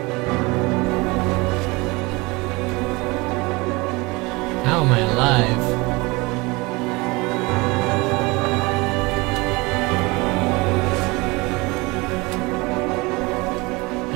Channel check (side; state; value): left; quieter; 24.6 dB